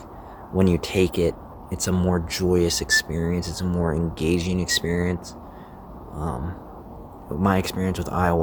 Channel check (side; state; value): both; identical; correlation 1.00